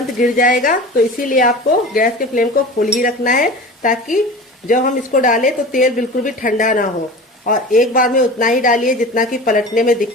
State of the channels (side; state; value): both; normal; correlation 0.35